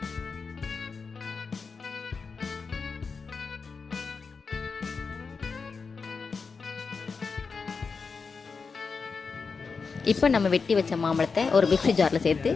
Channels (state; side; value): quieter; right; 5.0 dB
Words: இப்போ நம்ம வெட்டி வச்ச மாம்பழத்தை ஒரு மிக்ஸி ஜாரில் சேர்த்து